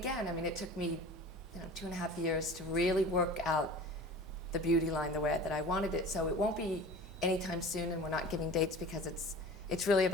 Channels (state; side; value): normal; both; correlation 0.39